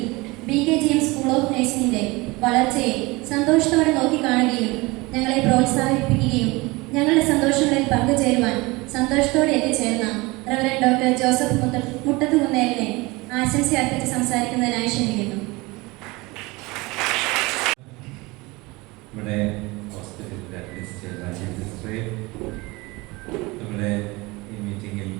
BKGM സ്കൂൾ ഓഫ് നഴ്സിംഗിന്റെ വളർച്ചയെ സന്തോഷത്തോടെ നോക്കിക്കാണുകയും ഞങ്ങളെ പ്രോത്സാഹിപ്പിക്കുകയും ഞങ്ങളുടെ സന്തോഷങ്ങളിൽ പങ്കുചേരുവാൻ സന്തോഷത്തോടെ എത്തിച്ചേർന്ന റവറൻഡ് ഡോക്ടർ ജോസഫ് മുട്ടത്തുകുന്നേലിനെ ആശംസ അർപ്പിച്ച് സംസാരിക്കുന്നതിനായി ക്ഷണിക്കുന്നു. നമ്മുടെ ഹോസ്പിറ്റലിൻ്റെ അഡ്മിനിസ്ട്രേറ്റർ നമ്മുടെ ഈ മീറ്റിങ്ങിൽ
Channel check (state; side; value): quieter; left; 23.4 dB